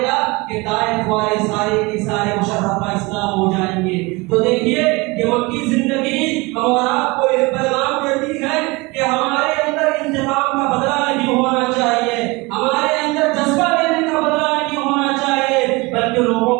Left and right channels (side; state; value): left; quieter; 24.7 dB